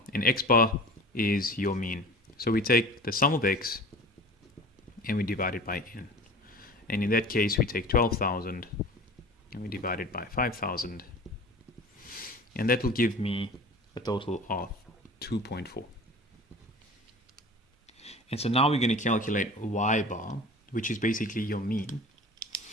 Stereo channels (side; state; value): both; normal; correlation 0.39